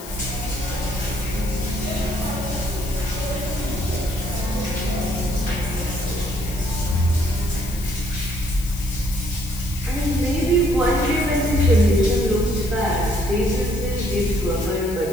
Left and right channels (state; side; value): noise; left; hiss, 14 dB below the sound